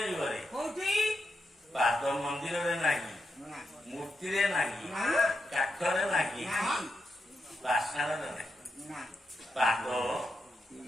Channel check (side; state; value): both; normal; correlation 0.85